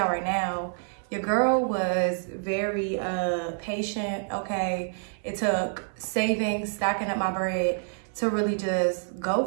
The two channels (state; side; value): silent; left; 58 dB below the other